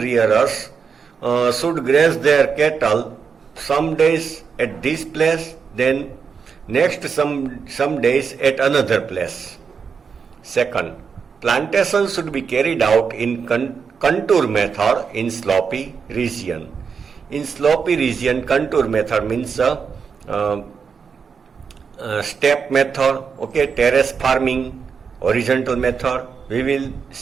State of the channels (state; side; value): quieter; left; 6.0 dB